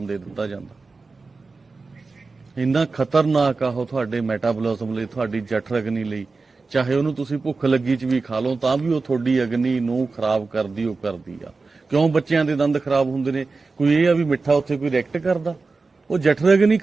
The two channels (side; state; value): left; quieter; 4.0 dB